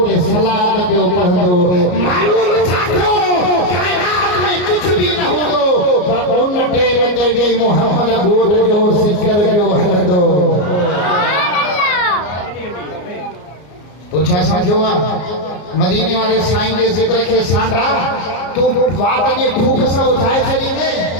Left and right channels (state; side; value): late; right; 33 ms